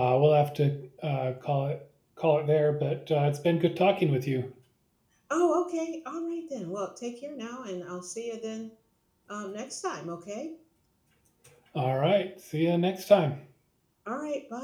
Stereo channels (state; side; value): identical; both; correlation 1.00